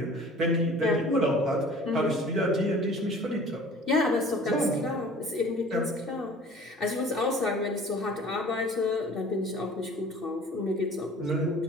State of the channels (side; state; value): both; normal; correlation 0.47